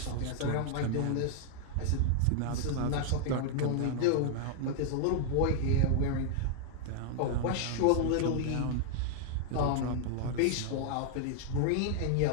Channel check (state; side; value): different; both; correlation -0.01